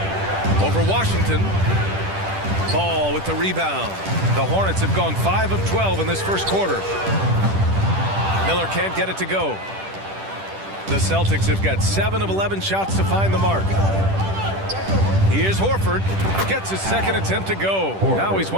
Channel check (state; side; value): late; left; 10 ms